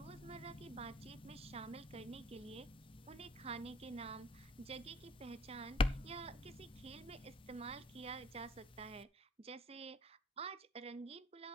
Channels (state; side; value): normal; both; correlation 0.55